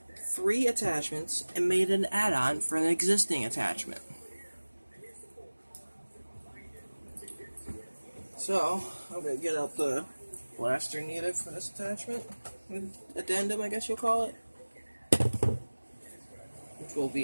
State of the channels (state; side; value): inverted; both; correlation -1.00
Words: 3 attachments and made an add-on for an existing attachment. So, I'm going to get out the blaster needed for this attachment, addendum I guess you'll call it, which will